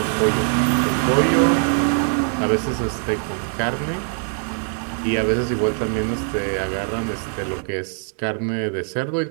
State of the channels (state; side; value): silent; left; 56 dB below the other